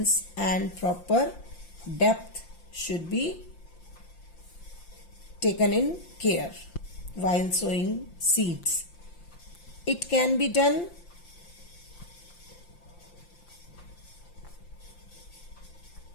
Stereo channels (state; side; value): late; right; 5.8 ms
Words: and proper depth should be taken in care while sowing seeds. It can be done